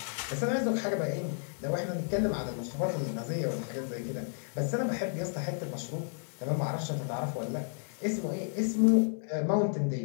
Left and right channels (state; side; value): silent; right; digital silence